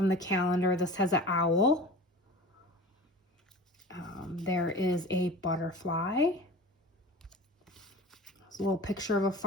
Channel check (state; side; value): normal; both; correlation 0.38